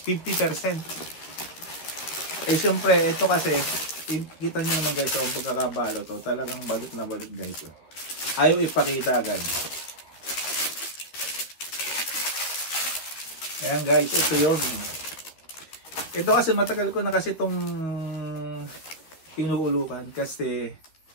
Eh siyempre, ito kasi, kita nyo naman guys, ang pagkakabalo to. Talagang balot na balot guys. Ayaw ipakita agad. Ayan guys, ito yun. Ito kasi matagal ko na kasi itong pinuulukan. Kasi,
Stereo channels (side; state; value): right; late; 13 ms